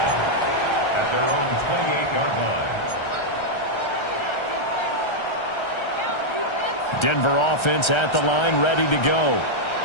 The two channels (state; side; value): late; right; 1.3 ms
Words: at their own 28-yard line. Denver offense at the line, ready to go.